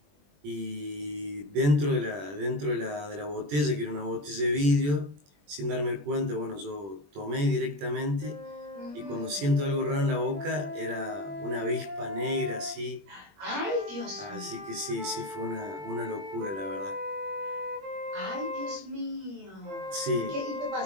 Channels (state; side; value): late; left; 21 ms